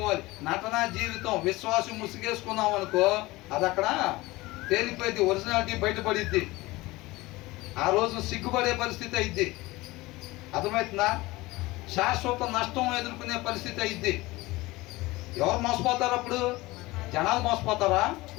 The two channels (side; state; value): right; quieter; 20.5 dB